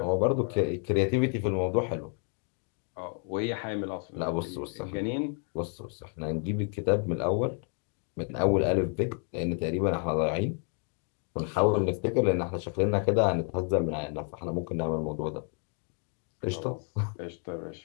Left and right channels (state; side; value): quieter; right; 39.5 dB